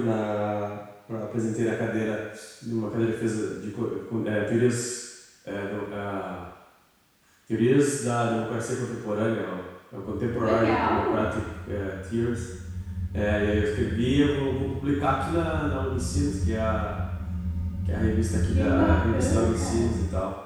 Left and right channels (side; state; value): both; identical; correlation 1.00